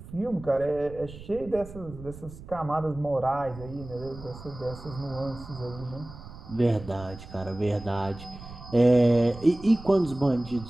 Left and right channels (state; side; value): noise; right; rumble, 15 dB below the sound